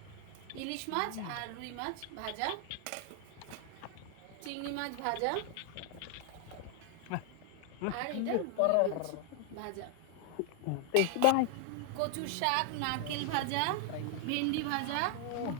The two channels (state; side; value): different; both; correlation 0.00